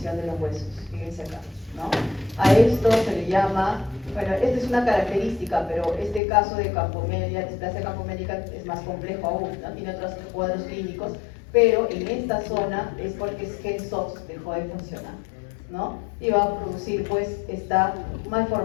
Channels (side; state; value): right; drops out; at 6.2 s